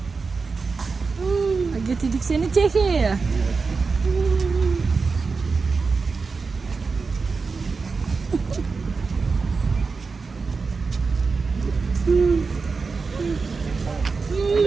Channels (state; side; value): quieter; left; 4.6 dB